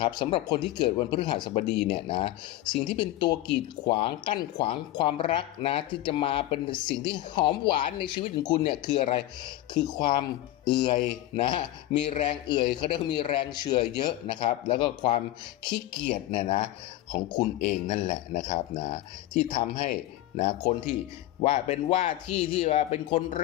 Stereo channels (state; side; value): quieter; right; 14.9 dB